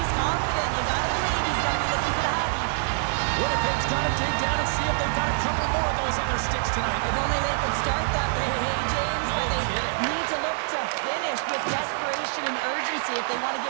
Paul's got to dig down and see if they've got a couple more of those on their sticks tonight. If only they could start that way, hey, James. No but they kidding. need to look to finish with desperation and urgency if they want to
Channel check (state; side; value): silent; left; digital silence